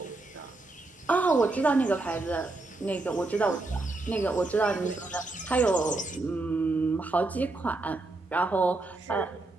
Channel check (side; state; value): left; quieter; 3.1 dB